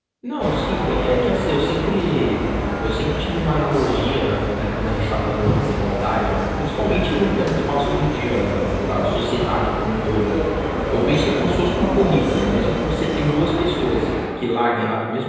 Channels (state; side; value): identical; both; correlation 1.00